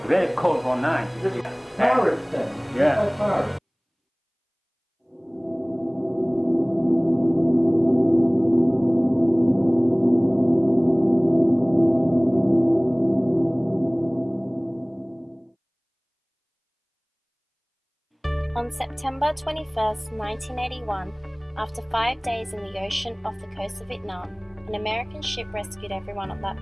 Very cold for night. Pirates then? Yeah. Like pirates. On September 21st, 1981, after 5 days in the ocean off the coast of Vietnam, an American ship rescued everyone on that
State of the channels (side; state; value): both; identical; correlation 1.00